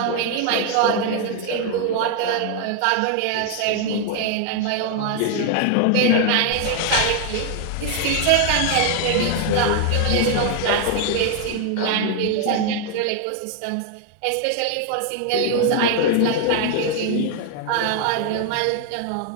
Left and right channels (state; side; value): different; both; correlation 0.00